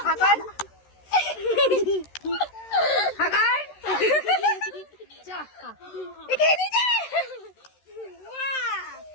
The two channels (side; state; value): right; late; 13 ms